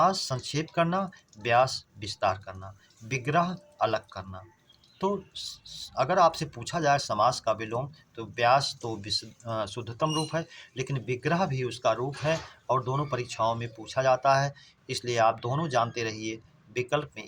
संक्षेप करना, व्यास विस्तार करना, विग्रह अलग करना। तो अगर आपसे पूछा जाए समास का विलोम, तो व्यास तो शुद्धतम रूप है, लेकिन विग्रह भी उसका रूप है और दोनों परीक्षाओं में पूछा जाता है, इसलिए आप दोनों जानते रहिए। विकल्प में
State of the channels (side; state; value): both; identical; correlation 1.00